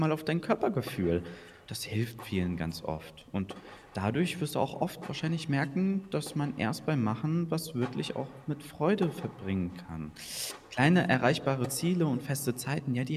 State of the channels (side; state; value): both; identical; correlation 1.00